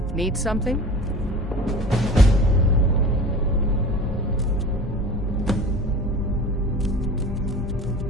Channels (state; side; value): normal; both; correlation 0.38